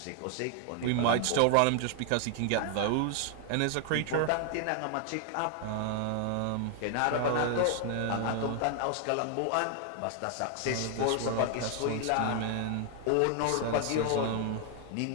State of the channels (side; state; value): both; different; correlation 0.00